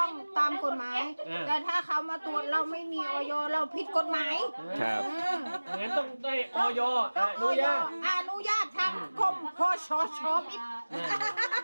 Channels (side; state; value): both; inverted; correlation -1.00